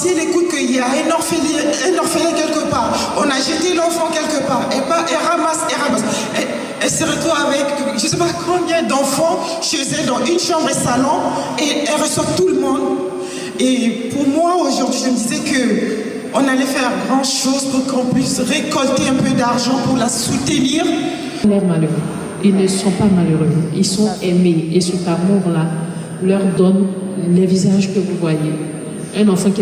elle écoute qu'il y a un orphelin quelque part, on a jeté l'enfant quelque part, elle ramasse. Elle se retrouve avec je ne sais pas combien d'enfants chez elle dans une chambre et salon, et elle reçoit tout le monde. Et pour moi, aujourd'hui, je me disais qu'on allait faire grand chose pour qu'on puisse récolter un peu d'argent pour la soutenir. Ils sont malheureux. Ils ne sont pas malheureux. Ils sont aimés. Et cet amour-là leur donne les visages que vous voyez. Un enfant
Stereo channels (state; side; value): identical; both; correlation 1.00